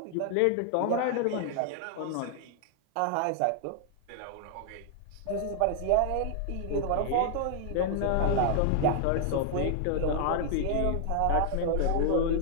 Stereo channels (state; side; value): different; both; correlation 0.00